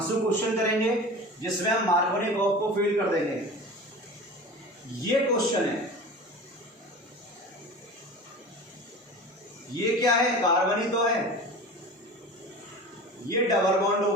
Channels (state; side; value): normal; both; correlation 0.35